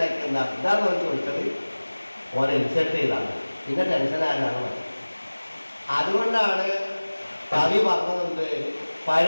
എന്താ ഇതാന്ന് പറഞ്ഞ് ചോദിച്ചത് ഓനെ ഇൻസൾട്ട് ചെയ്താണ് പിന്നെ ടെൻഷനാകാനാണ്. അതുകൊണ്ടാണ് കവി പറഞ്ഞതുണ്ട്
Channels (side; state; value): both; inverted; correlation -1.00